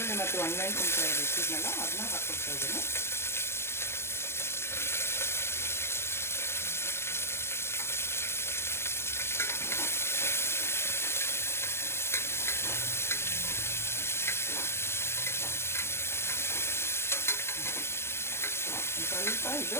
ಮತ್ತು ಒಣಮೆಣಸಿನ್ಕಾಯಿ ಇಟ್ಟಿದ್ನಲ್ಲ ಅದನ್ನ ಹಾಕ್ಕೊಳ್ತಾ ಇದ್ದೀನಿ. ಸ್ವಲ್ಪ ಇದು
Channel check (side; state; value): right; late; 0.12 ms